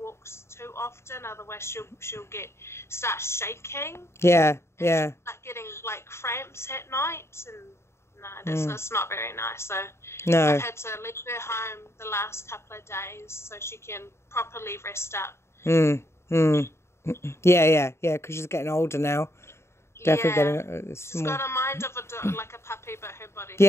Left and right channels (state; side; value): late; right; 0.13 ms